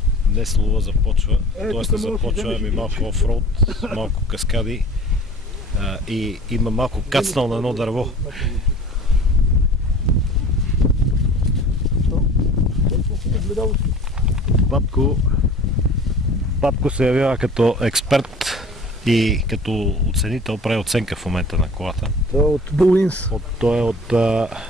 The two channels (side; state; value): both; normal; correlation 0.44